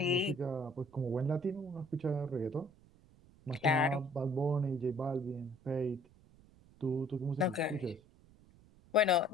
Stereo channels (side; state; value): right; noise; rumble, 26 dB below the sound